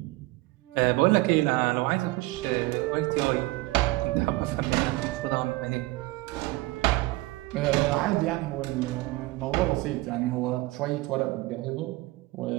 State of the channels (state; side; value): quieter; left; 20.8 dB